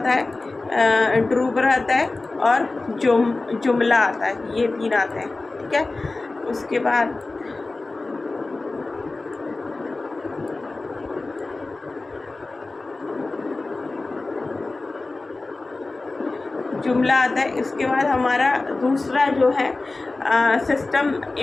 है, ड्रूबर आता है और जुमला आता है, ये 3 आते हैं, ठीक है। उसके बाद जुमला आता है। इसके बाद हमारा दूसरा जो है सिस्टम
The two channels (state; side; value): quieter; right; 3.3 dB